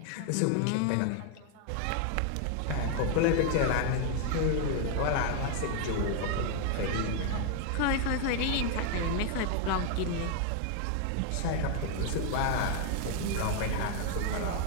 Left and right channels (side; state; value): both; different; correlation 0.00